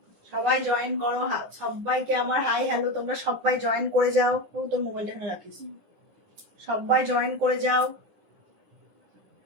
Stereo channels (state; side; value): late; left; 9.8 ms